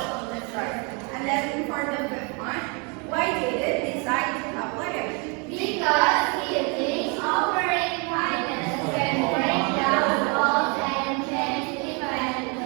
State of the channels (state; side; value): quieter; left; 32.9 dB